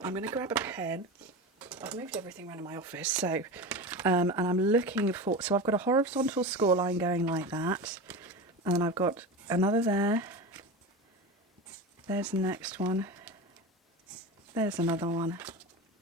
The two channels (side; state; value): both; normal; correlation 0.26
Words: I'm going to grab a pen. I've moved everything around in my office, so and I'm looking for, so I've got a horizontal score line going like that, and then I've got another there, there's the next one, there's another one,